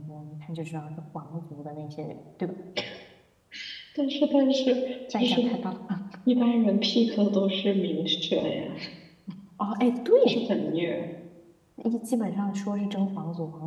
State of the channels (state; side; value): identical; both; correlation 1.00